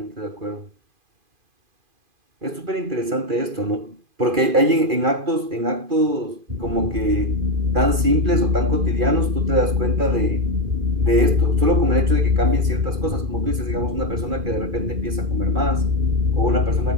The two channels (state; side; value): late; left; 2.5 ms